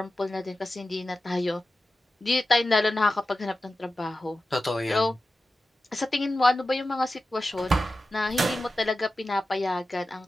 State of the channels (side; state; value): both; normal; correlation 0.93